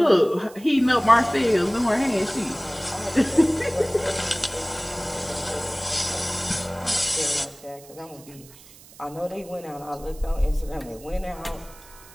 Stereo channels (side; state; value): right; noise; hiss, 22 dB below the sound